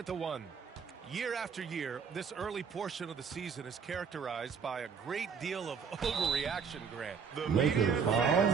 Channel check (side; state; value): left; quieter; 6.2 dB